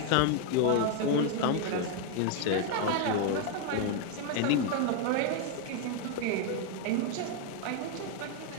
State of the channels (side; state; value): both; different; correlation 0.01